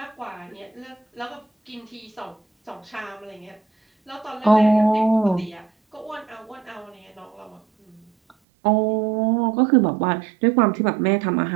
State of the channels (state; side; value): drops out; left; at 8.3 s